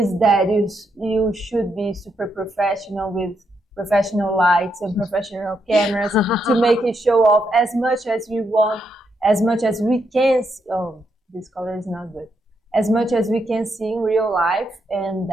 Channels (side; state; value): both; normal; correlation 0.80